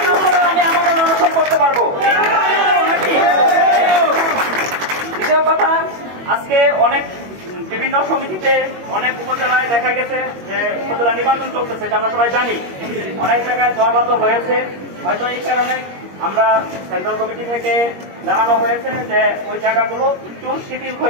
আমি আমার অনশন করতে পারবো। দ্বিতীয় কথা, আজকে অনেক বিভিন্ন সমিতিতে অনেক উপজেলায় দেখা গেছে যে উপজেলা নির্বাচন চলতেছে, এটা আমরা সবাই জানি। অনেক জায়গায় জবাবত হয়েছে, হয়তো এই কারণে আমরা সেন্ট্রাল কমিটি থেকে জানানো হয়েছে যে ওই জায়গাগুলো একটু শিথিল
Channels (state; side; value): late; left; 21 ms